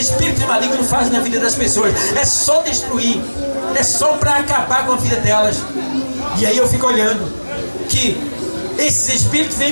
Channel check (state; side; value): inverted; both; correlation -1.00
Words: malignos fazem na vida das pessoas, é só destruir, é só para acabar com a vida delas. E aí eu fico olhando que esses espíritos